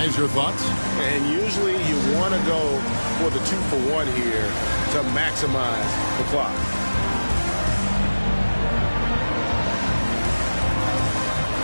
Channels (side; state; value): both; inverted; correlation -1.00